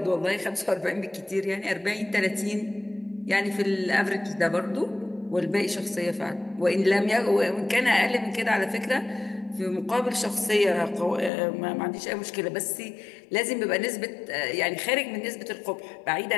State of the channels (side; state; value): right; drops out; at 11.3 s